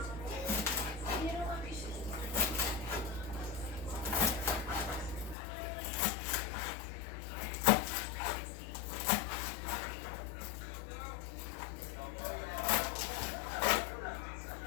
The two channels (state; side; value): drops out; right; at 5.4 s